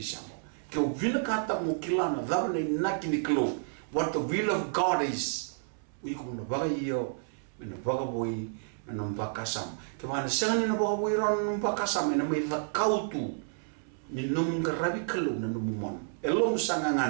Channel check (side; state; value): left; silent; 57 dB below the other